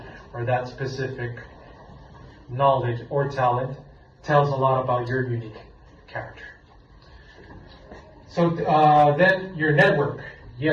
or that specific knowledge or talent tells a lot about your unique character. So then your network.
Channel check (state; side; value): identical; both; correlation 1.00